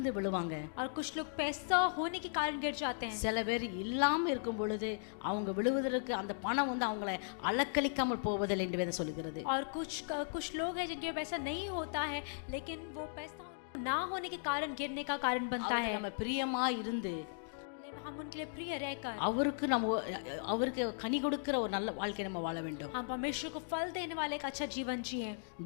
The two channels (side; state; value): right; silent; digital silence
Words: விழுவாங்க, और कुछ लोग पैसा होने के कारण गिर जाते हैं. சில பேர் இல்லாம இருக்கும் பொழுது அவங்க விழுவதற்கு அந்த பணம் அவங்களை அலக்களிக்காமல் போவதில்லை என்று வேதம் சொல்கிறது. और कुछ लोग हैं जिनके पैसा नहीं होता है, लेकिन वो पैसा ना होने के कारण गिरने का कारण बनता है. நம்ம பிரியமா இருந்து हम उनके लिए प्रिय रहकर அவருக்கு கனி கொடுக்கிற ஒரு நல்ல வாழ்க்கை நம்ம வாழ வேண்டும். हम परमेश्वर को फल देने वाले एक अच्छा जीवन जिए.